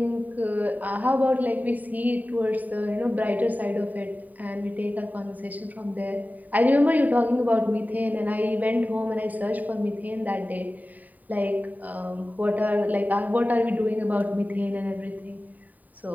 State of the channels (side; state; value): left; late; 0.080 ms